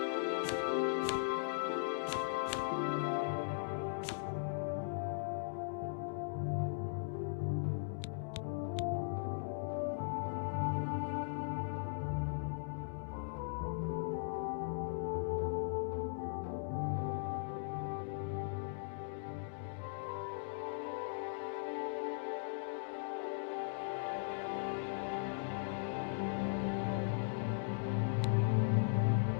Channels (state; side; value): silent; right; digital silence